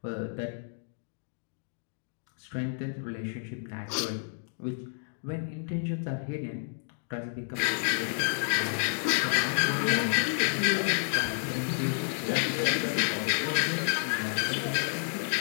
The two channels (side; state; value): right; silent; digital silence